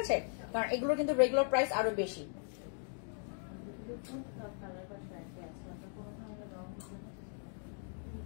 আছে, কারণ এগুলো কিন্তু রেগুলার প্রাইস আরো বেশি।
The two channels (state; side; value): silent; right; 52 dB below the other